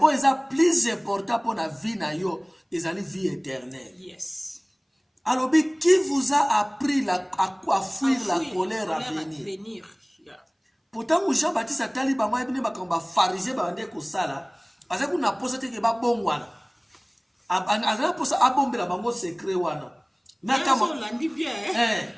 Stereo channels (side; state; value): both; identical; correlation 1.00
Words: o eza plus important pour la vie na yo, ezali vie éternelle. Yes. Alors, qui vous a appris à fuir la colère à venir? Pourtant, Jean-Baptiste a tali ba moi bine ba kamba pharisien ba ndé ko sala, parce que na posa te ke ba bongwana. Azana posa abombela bango secret wana. Na kama landi bien.